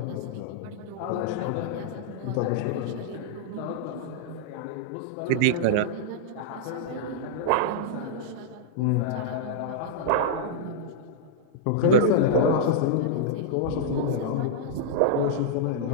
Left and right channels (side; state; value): both; different; correlation -0.02